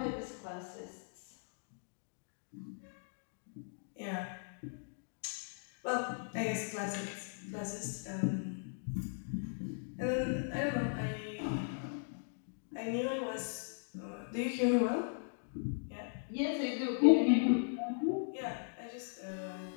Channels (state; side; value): silent; right; digital silence